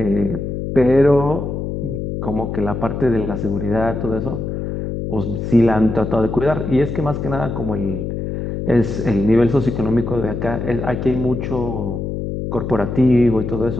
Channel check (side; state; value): left; noise; hum, 4 dB below the sound